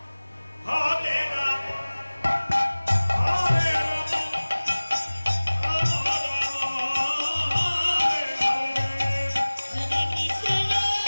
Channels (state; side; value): inverted; both; correlation -1.00